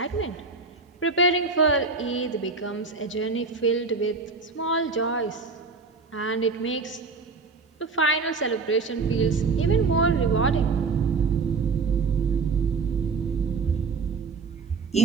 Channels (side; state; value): left; quieter; 4.4 dB